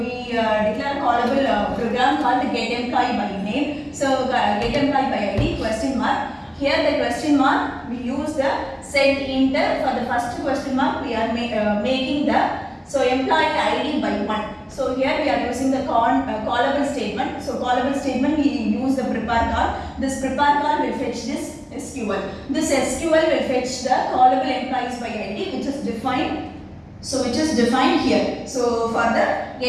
declare a callable program called get employee by name. So get employee by ID question mark. Here the question mark we use the set int. For the first question mark we are making the employee ID by 1. So here we are using the callable statement. So callable statement we use the prepare call. This prepare call will fetch this SQL. This SQL will fetch the callable employees by ID which is defined. So which is defined here. So for the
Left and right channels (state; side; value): identical; both; correlation 1.00